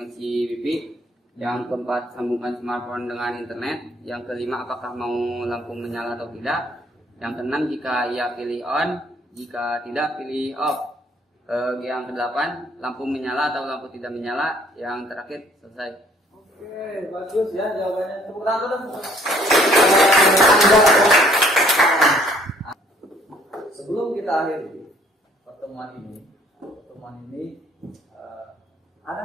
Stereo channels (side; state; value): both; normal; correlation 0.61